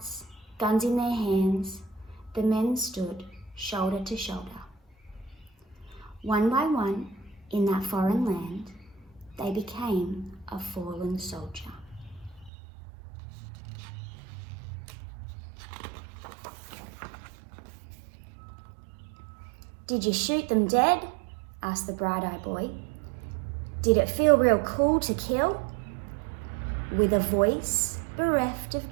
guns in their hands, the men stood shoulder to shoulder. One by one, in that foreign land, they became a fallen soldier. "Did you shoot them dead?" asked the bright-eyed boy. "Did it feel real cool to kill?" With a voice bereft of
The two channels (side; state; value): left; drops out; at 12.5 s